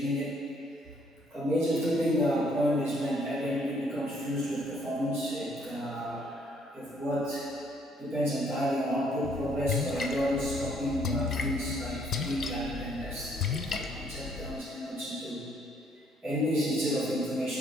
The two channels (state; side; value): normal; both; correlation 0.66